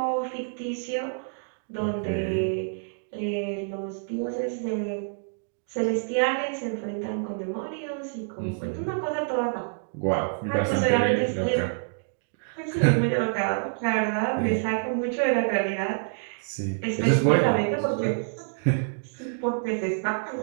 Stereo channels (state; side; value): silent; left; digital silence